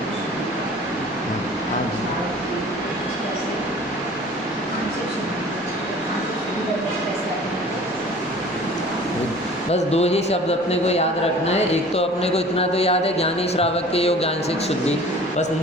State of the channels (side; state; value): left; noise; rumble, 29 dB below the sound